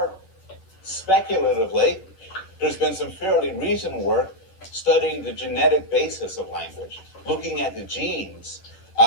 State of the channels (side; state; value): right; late; 10 ms